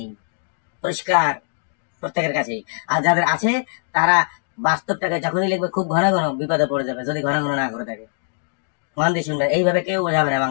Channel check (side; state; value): right; silent; digital silence